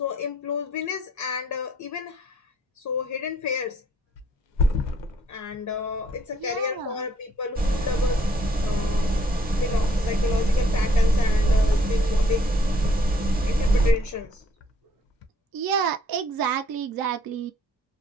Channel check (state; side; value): normal; both; correlation 0.65